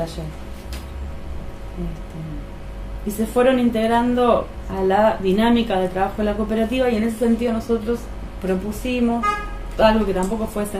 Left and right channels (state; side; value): identical; both; correlation 1.00